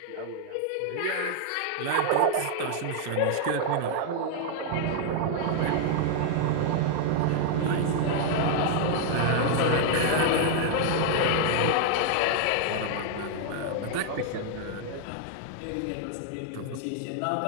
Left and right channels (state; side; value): different; both; correlation 0.00